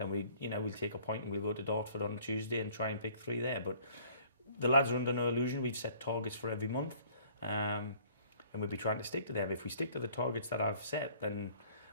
we'll take a point and we'll go to Dartford on Tuesday and try and pick 3 there. But the lads are under no illusion. We've set targets for every month, and we'll be trying to stick to them. If we stick to the targets that I've set, then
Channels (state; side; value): inverted; both; correlation -0.56